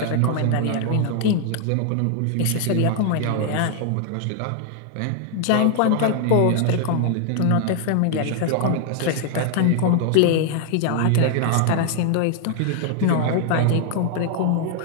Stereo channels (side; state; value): both; different; correlation 0.00